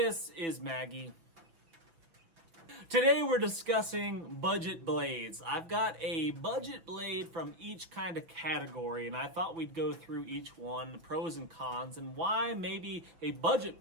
is Maggie. Today we're discussing budget blades. I've got a budget blade from each kind of category and I thought we'd go through each one, the pros and cons, and why maybe a budget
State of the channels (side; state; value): left; late; 6.0 ms